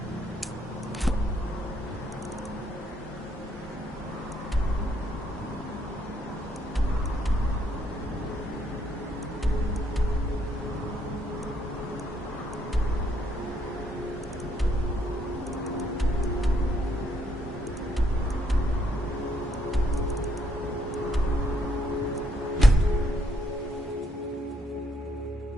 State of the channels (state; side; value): normal; both; correlation 0.72